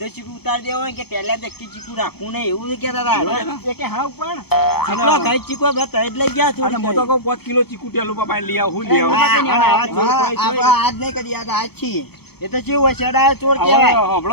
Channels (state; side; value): late; right; 0.96 ms